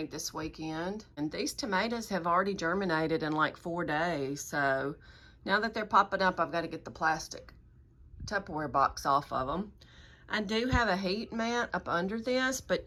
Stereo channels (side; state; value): both; identical; correlation 1.00